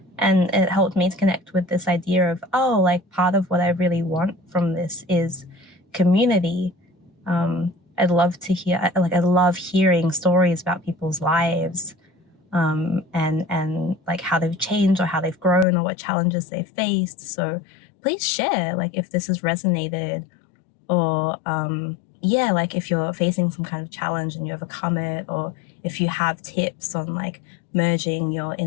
and it helped me to connect with this idea of, oh, like part of what I really want from this is community. I'd love to hear, like, I love hearing stories about people's lives, and like how they've changed or how they've grown or what challenges they've faced. So please share, like, if this has resonated, or yeah, like if you're facing some kind of challenge and you overcome it, or if you have tips on like merging your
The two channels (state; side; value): drops out; right; at 15.7 s